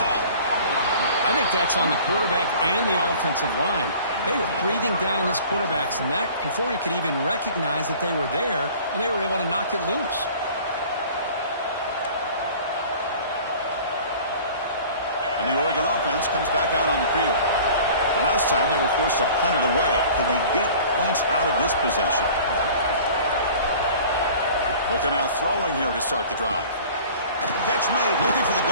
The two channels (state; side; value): inverted; both; correlation -0.46